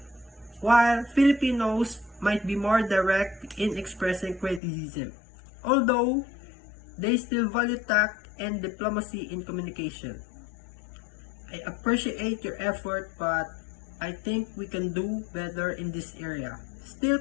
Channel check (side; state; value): right; drops out; at 4.6 s